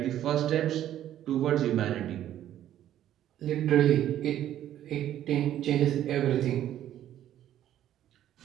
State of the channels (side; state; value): left; quieter; 11.8 dB